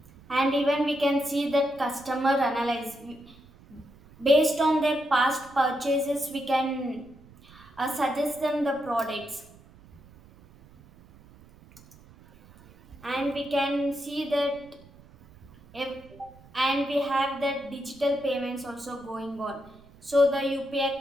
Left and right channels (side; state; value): right; noise; rumble, 24 dB below the sound